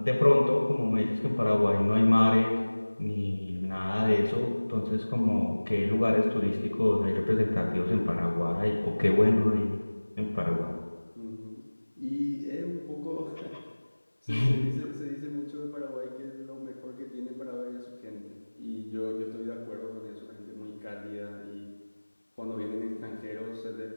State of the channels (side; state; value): both; inverted; correlation -1.00